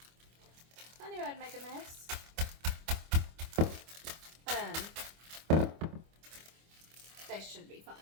I knew I'd make a mess. They should be fine.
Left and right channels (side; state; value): left; late; 25 ms